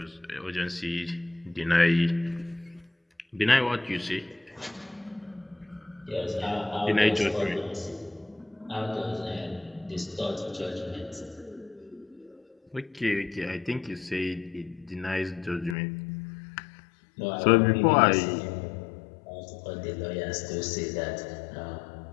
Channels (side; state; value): right; drops out; at 15.8 s